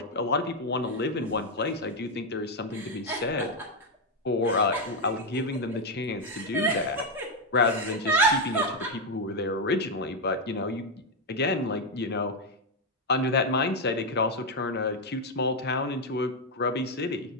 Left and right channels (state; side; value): normal; both; correlation 0.03